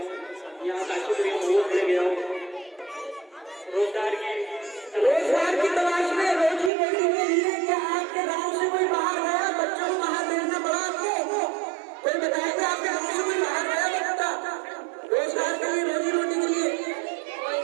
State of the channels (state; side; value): drops out; left; at 6.7 s